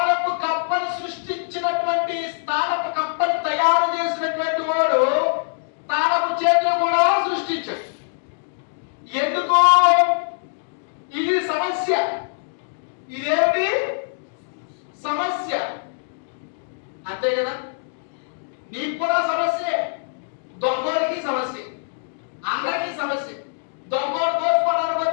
కప్పను సృష్టించినటువంటి, తాళపు కప్పను తయారు చేసినటువంటి వాడు తాళపు చేతులు కూడా సృష్టించాడు. ఎందుకో? ఇది సమస్య. ఇదేమిటి? సమస్య. అంతే కదా. నీకు కూడా సమస్యే, దొంగోడికి సమస్య, అందరికీ సమస్య. దొంగోడు కోసుకోవడానికి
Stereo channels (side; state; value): right; silent; digital silence